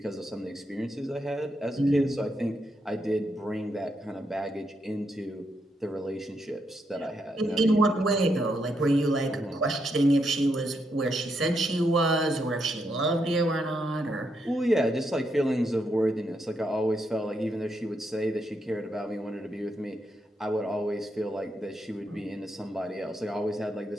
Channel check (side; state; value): both; normal; correlation 0.80